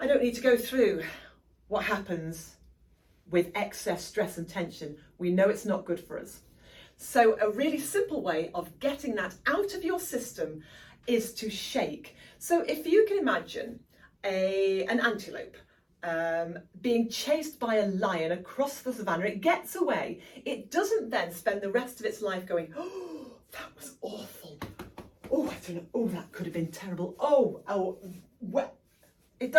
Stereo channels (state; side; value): identical; both; correlation 1.00